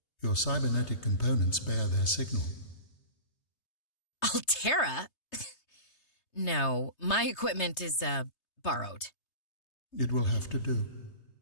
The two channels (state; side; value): late; right; 3.3 ms